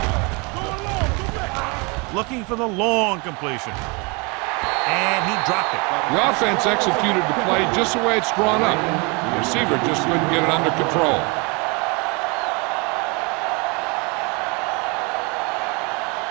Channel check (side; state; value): left; quieter; 29.9 dB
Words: Go along, go back. Looking for the long completion. And he dropped it. The offense executed the play just the way it's drawn up. The receiver just couldn't get it under control.